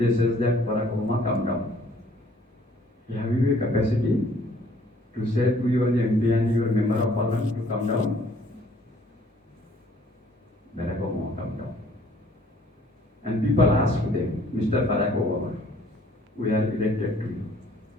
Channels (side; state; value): both; normal; correlation 0.59